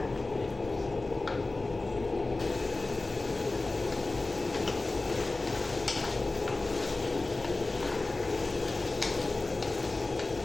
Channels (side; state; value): right; quieter; 3.2 dB